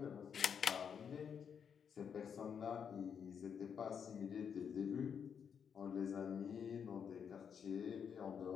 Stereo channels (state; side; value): quieter; right; 7.3 dB